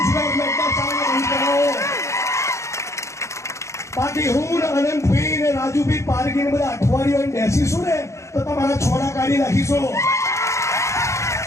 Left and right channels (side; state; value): right; late; 0.14 ms